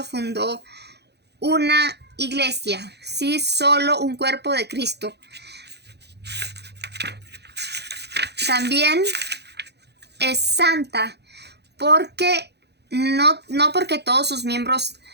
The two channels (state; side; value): late; left; 0.49 ms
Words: fundó una iglesia, ¿sí? Solo un cuerpo de Cristo. También es santa porque no porque todos sus miembros